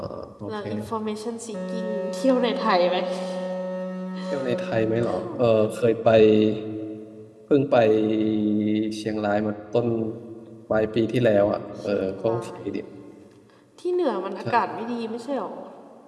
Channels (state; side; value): identical; both; correlation 1.00